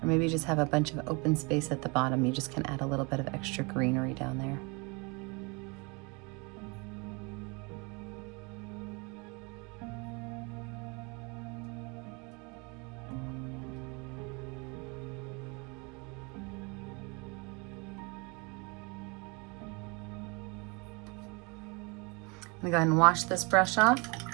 Or maybe you just have a bunch of open space at the bottom. You just can add a little bit of extra greenery down there. I'm gonna go ahead and wash this brush off.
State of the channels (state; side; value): quieter; left; 29.8 dB